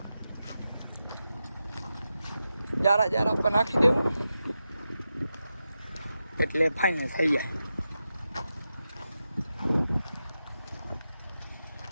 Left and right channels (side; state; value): both; inverted; correlation -0.90